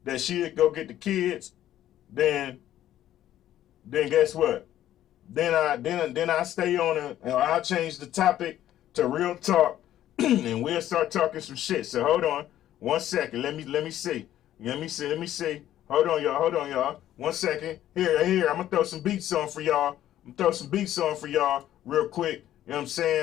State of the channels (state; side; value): quieter; right; 12.4 dB